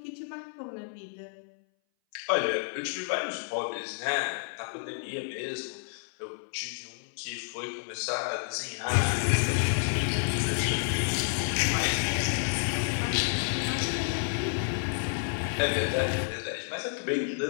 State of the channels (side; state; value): right; silent; 58 dB below the other